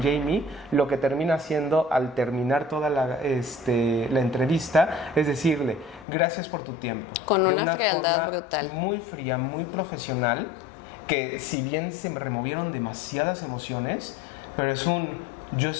lo que termina haciendo al terminar toda la entrevista es decirle, gracias por tu tiempo. Con una frialdad brutal. Muy fría, muy profesional, que si bien se removieron demasiadas emociones, pero es yo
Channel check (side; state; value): right; drops out; at 6.1 s